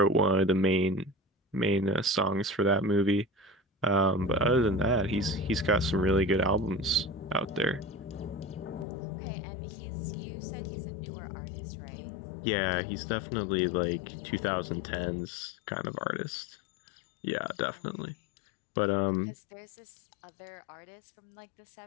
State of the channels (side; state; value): right; drops out; at 8.8 s